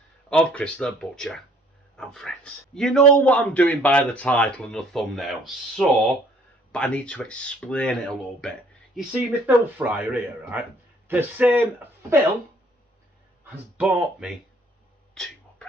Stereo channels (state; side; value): normal; both; correlation 0.59